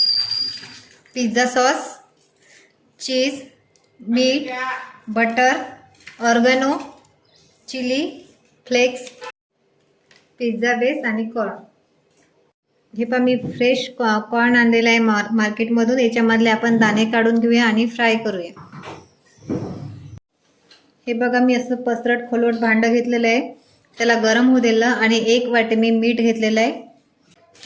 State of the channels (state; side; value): identical; both; correlation 1.00